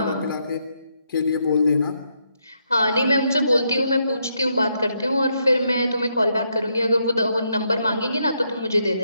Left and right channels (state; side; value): inverted; both; correlation -0.78